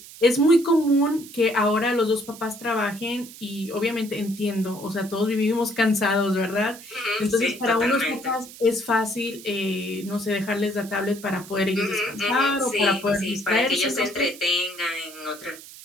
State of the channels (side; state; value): right; noise; hiss, 17 dB below the sound